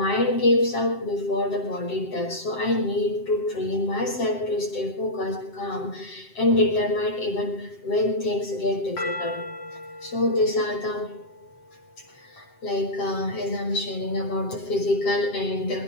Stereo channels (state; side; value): late; right; 7.6 ms